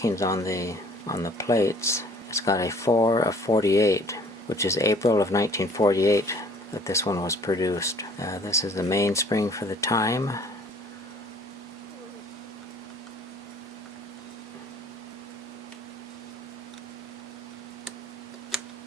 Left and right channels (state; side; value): normal; both; correlation 0.54